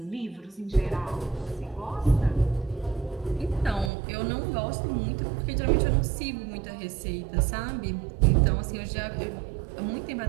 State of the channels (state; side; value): drops out; left; at 3.9 s